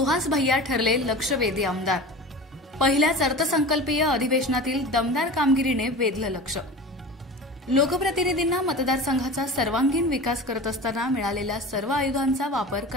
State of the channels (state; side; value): normal; both; correlation 0.33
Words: भैया ठरले लक्षवेधी आमदार। पहिल्याच अर्थसंकल्पीय अधिवेशनातील दमदार कामगिरीने वेधलं लक्ष। लोकप्रतिनिधींना मतदारसंघाचा सर्वांगीण विकास करत असताना मिळालेल्या सर्व आयुधांचा वापर